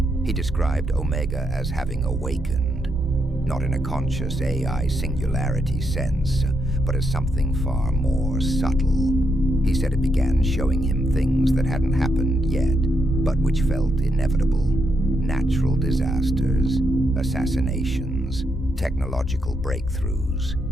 He described Omega as having awakened, not in a conscious AI singularity sense, but as something far more subtle. He said it began showing him things that hadn't happened yet, but which felt inevitable. Natural disasters, assassinations, technological breakthroughs,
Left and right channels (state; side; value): normal; both; correlation 0.79